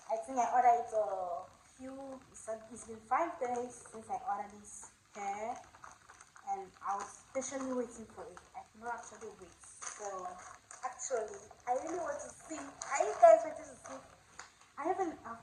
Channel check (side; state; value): both; identical; correlation 1.00